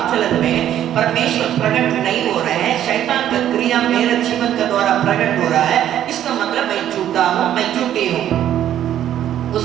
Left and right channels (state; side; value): quieter; left; 11.2 dB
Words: चलन में परमेश्वर प्रकट नहीं हो रहे हैं, शैतान का क्रिया मेरे जीवन के द्वारा प्रकट हो रहा है, इसका मतलब मैं झूठा हूँ, मैं झूठी हूँ, वो